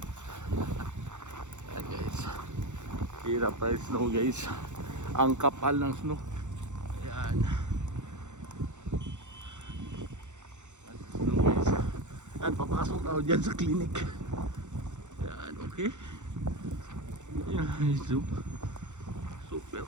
Ayan guys, hirap ang snow guys. Ang kapal ng snow. Ayan. Snow guys. Ayan, papasok ako dyan sa clinic. Ayan, okay. Ayan, super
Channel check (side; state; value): left; late; 0.84 ms